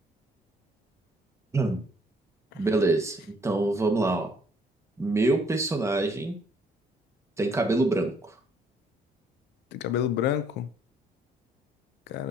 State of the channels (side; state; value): both; normal; correlation 0.65